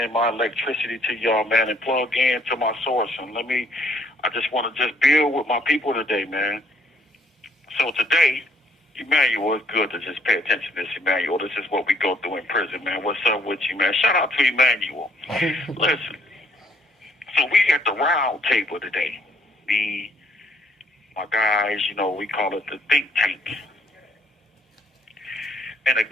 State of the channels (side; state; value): both; normal; correlation 0.65